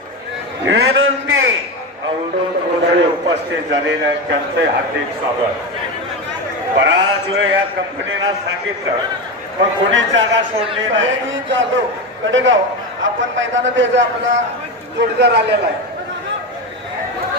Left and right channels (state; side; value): normal; both; correlation 0.18